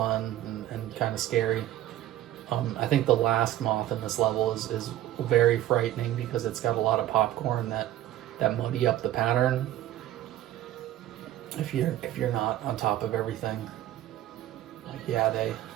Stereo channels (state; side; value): quieter; left; 13.3 dB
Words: and kind of scary. I think the last moth in this level is very frightening because it's got a lot of popcorn that muddy up the pattern. If you're not on top of everything, like,